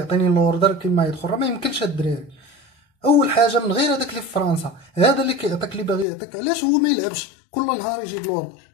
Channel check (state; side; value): drops out; right; at 6.1 s